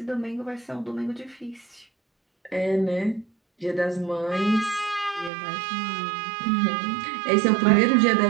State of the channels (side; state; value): left; drops out; at 5.3 s